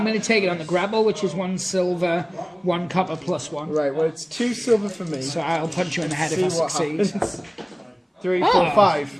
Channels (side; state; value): both; identical; correlation 1.00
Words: going to take it on the grapple, which is 1 silver, 1 copper plus 1. Right, well, it's 2 silver for me. So I'll punch you in the head See if I what succeed. happens. 3, 4,